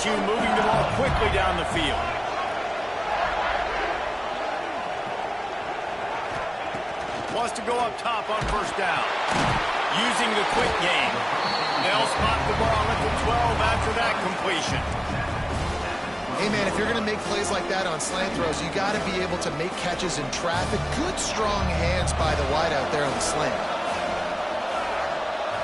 moving the ball quickly down the field. Wants to go up top on 1st down. Using the quick game. They'll spot the ball at the 12 after that completion. Hey, man, if you're going to make plays like that on slant throws, you got to be able to make catches in traffic. Good, strong hands by the wide out there on the slant.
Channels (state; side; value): identical; both; correlation 1.00